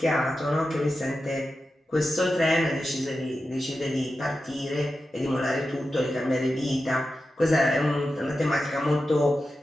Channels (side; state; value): both; normal; correlation 0.91